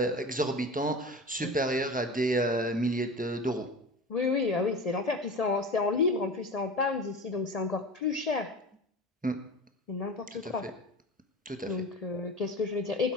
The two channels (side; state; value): both; normal; correlation 0.32